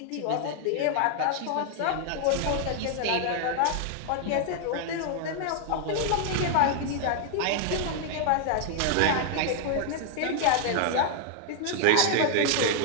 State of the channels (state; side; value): different; both; correlation 0.00